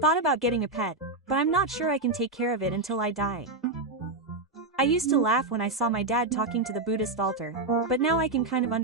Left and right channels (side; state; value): left; quieter; 3.1 dB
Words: about getting a pet, but I'm not sure I can take care of it until I die. I used to laugh when I saw my dad talking to the Buddhist altar, but now I can kind of